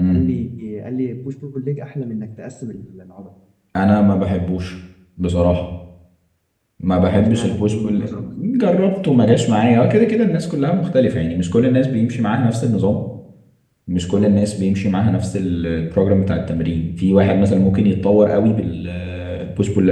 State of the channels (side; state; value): both; identical; correlation 1.00